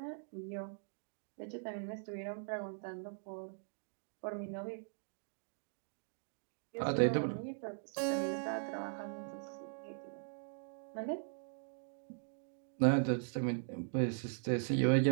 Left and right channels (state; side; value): silent; left; digital silence